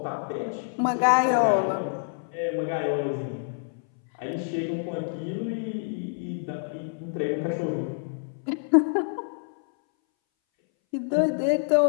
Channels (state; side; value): silent; right; 60 dB below the other